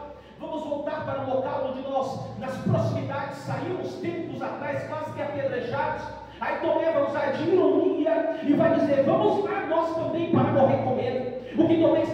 Vamos voltar para o local onde nós, nas proximidades, saímos tempos atrás, quase que apedrejados. Aí Tomé vai usar de ironia e vai dizer: vamos lá nós também para morrer com ele. O que Tomé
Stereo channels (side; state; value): both; identical; correlation 1.00